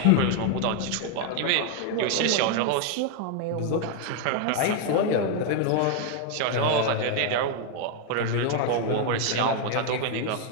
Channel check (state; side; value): different; both; correlation 0.00